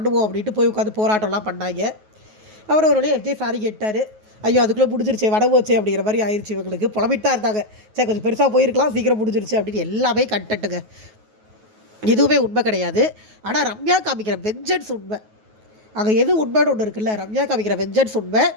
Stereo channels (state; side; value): late; left; 9.3 ms